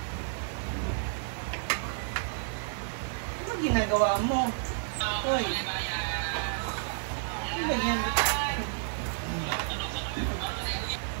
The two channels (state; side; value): silent; left; digital silence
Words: Ano ginagawa mo? Hoy. Ano ba yan?